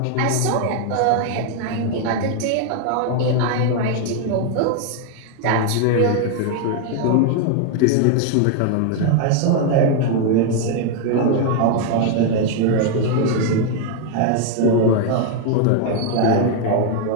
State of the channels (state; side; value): different; both; correlation 0.01